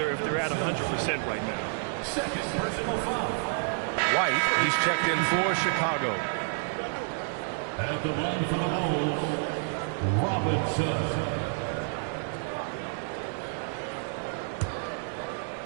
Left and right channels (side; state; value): left; silent; 58 dB below the other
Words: if they're at 100% right now. Second personal foul. White, he's checked in for Chicago. At the line for the Bulls, Robinson.